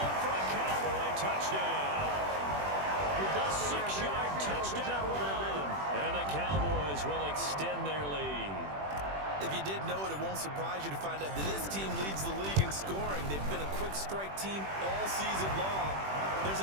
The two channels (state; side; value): late; left; 21 ms